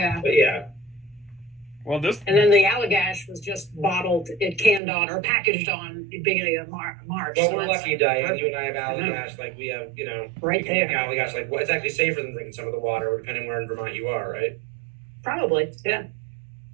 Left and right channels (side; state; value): left; drops out; at 4.8 s